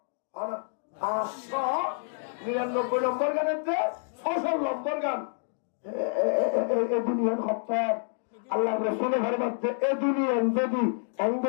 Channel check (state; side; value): silent; right; digital silence